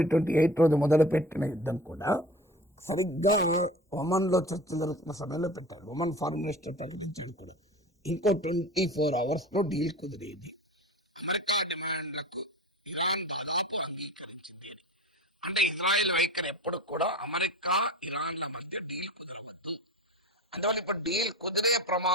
28 రోజు మొదలుపెట్టిన యుద్ధం కూడా సరిగ్గా ఒమన్లో చర్చలు జరుగుతున్న సమయంలో పెట్టారు. ఒమన్ ఫారిన్ మినిస్టర్ ప్రకటించాడు కూడా, ఇంకో 24 అవర్స్లో డీల్ కుదిరేది. అమెరికా డిమాండ్లకు ఇరాన్ దాదాపు అంగీకరించింది అని. అంటే ఇజ్రాయెల్ వైఖరి ఎప్పుడు కూడా అమెరికా ఇరాన్ల మధ్య డీల్ కుదరవద్దు. అందువల్ల ఇప్పుడు డీల్ కుదిరే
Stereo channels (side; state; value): both; normal; correlation 0.36